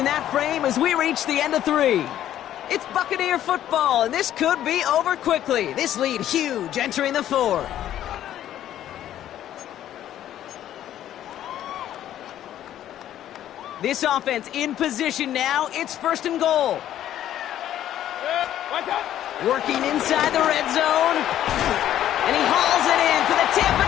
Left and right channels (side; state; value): right; quieter; 11.8 dB